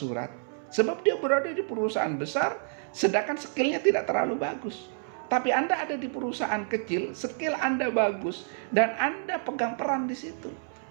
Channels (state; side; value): silent; left; 59 dB below the other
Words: Sebab dia berada di perusahaan besar, sedangkan skillnya tidak terlalu bagus. Tapi Anda ada di perusahaan kecil, skill Anda bagus, dan Anda pegang peran di situ.